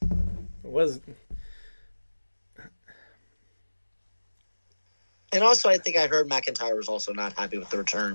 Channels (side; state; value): both; inverted; correlation -1.00